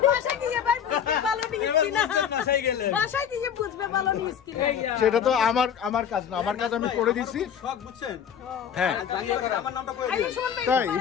সেটা তো আমার কাজ না, আমার কাজ আমি করে দিছি। হ্যাঁ তাই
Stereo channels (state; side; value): quieter; right; 8.4 dB